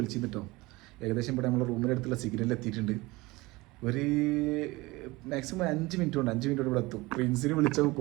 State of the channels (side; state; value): left; quieter; 21.9 dB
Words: ഏകദേശം ഇവിടെ നമ്മളെ റൂമിൻ്റെ അടുത്തുള്ള സിഗ്നലിൽ എത്തിയിട്ടുണ്ട്. ഒരു മാക്സിമം 5 മിനിറ്റ് കൊണ്ട് ഇവിടെ എത്തും. പ്രിൻസിനെ വിളിച്ചപ്പോൾ